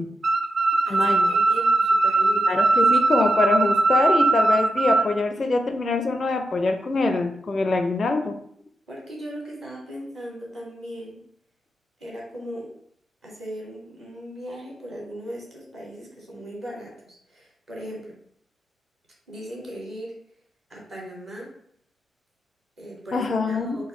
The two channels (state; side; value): normal; both; correlation 0.87